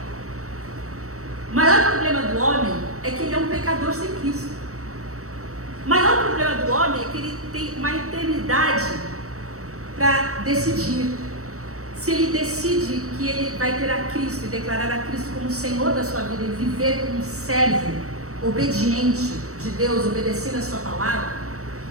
O maior problema do homem é que ele é um pecador sem Cristo. O maior problema do homem é que ele tem uma eternidade para decidir. Se ele decide que ele vai ter a Cristo e declarar a Cristo como Senhor da sua vida e viver como um servo obediente de Deus, obedecendo a sua palavra,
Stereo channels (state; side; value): late; left; 0.65 ms